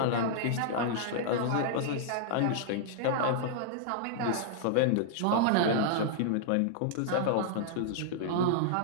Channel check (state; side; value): different; both; correlation -0.01